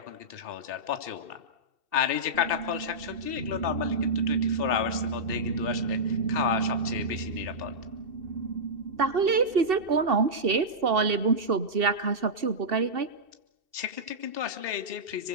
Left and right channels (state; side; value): late; left; 2.7 ms